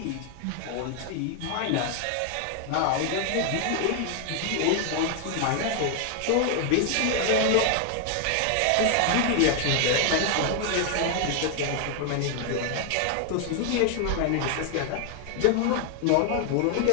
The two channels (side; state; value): both; different; correlation 0.00